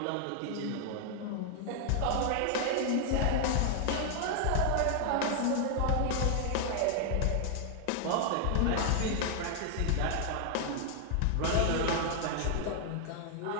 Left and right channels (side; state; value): both; different; correlation 0.00